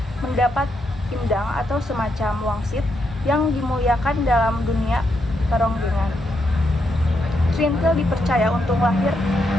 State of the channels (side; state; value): both; normal; correlation 0.80